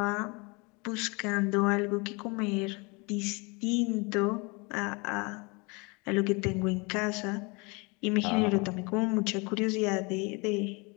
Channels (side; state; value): right; quieter; 28.8 dB